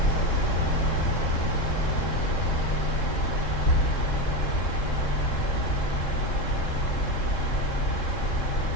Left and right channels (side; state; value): right; late; 3.7 ms